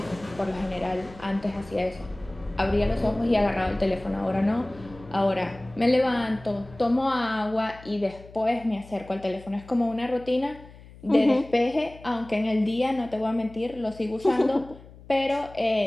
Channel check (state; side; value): noise; left; hum, 20 dB below the sound